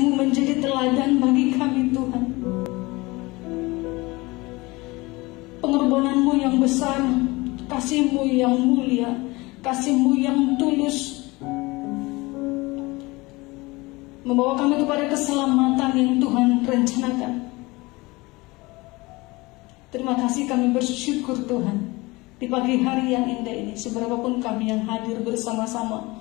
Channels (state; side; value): quieter; right; 22.8 dB